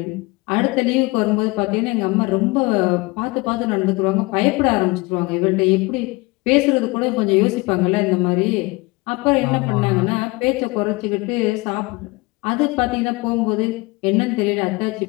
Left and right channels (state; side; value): quieter; right; 24.6 dB